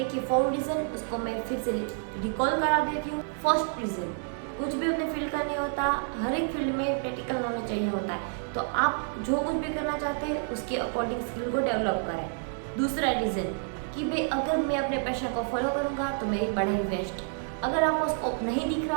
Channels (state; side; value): silent; left; 57 dB below the other